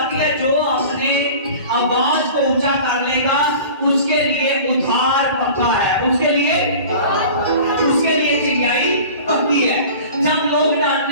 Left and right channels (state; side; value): inverted; both; correlation -0.40